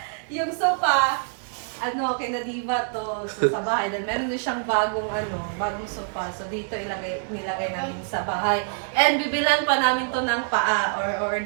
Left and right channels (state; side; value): silent; left; digital silence